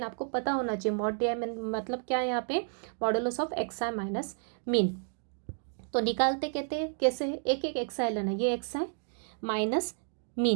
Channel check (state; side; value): silent; left; 57 dB below the other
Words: आपको पता होना चाहिए मॉड डी आई में मतलब क्या है यहाँ पे, modulus of x I minus mean. तो निकालते कहते हैं कैसे, एक एक एक्स आई लेना, ये एक्स आई माइनस